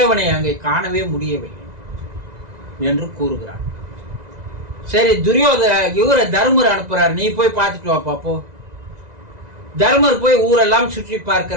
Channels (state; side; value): late; left; 1.9 ms